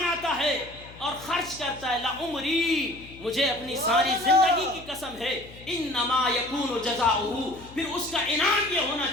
ہے اور خرچ کرتا ہے لعمری، مجھے اپنی ساری زندگی کی قسم ہے، انما یکون جزاؤہ، پھر اس کا انعام یہ ہونا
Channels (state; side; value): noise; left; hum, 19 dB below the sound